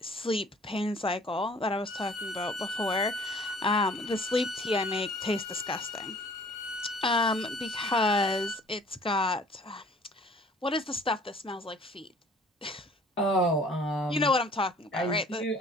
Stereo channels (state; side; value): normal; both; correlation 0.53